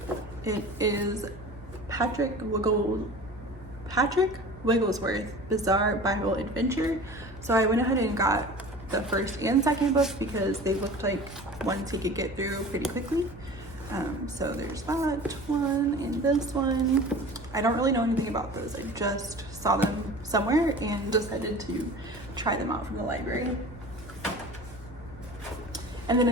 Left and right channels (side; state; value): both; normal; correlation 0.39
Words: It is Patrick Wigglesworth Bizarre Bible Adventure. So I went ahead and got the first and second book because they looked like ones he could get through pretty quickly. So there's that one and this one. I don't really know anything about those. I just saw them somewhere and decided to try them out from the library. And then